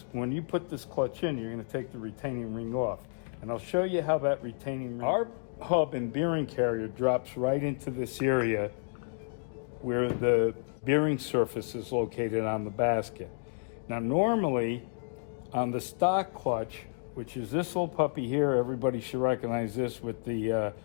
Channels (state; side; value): silent; right; digital silence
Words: when you put this clutch in, you're going to take the retaining ring off. And I'll show you how that retaining ring... Our hub and bearing carrier drops right into this area where the bearing surface is located on the basket. Now normally, on the stock clutch, which is this little puppy here, everybody should recognize this with the